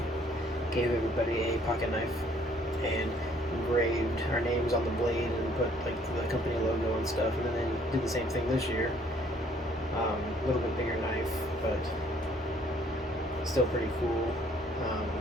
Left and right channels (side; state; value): both; normal; correlation 0.62